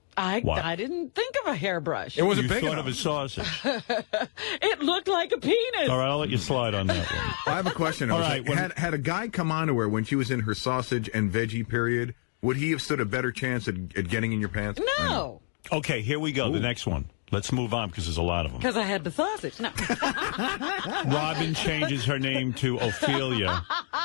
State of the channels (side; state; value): right; silent; 59 dB below the other